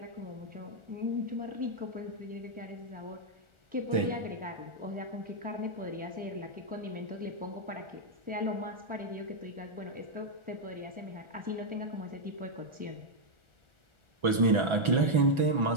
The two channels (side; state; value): left; late; 1.4 ms